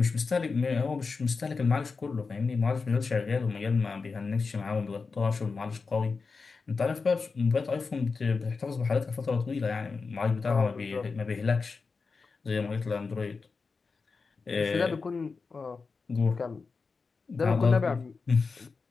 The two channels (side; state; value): right; quieter; 4.6 dB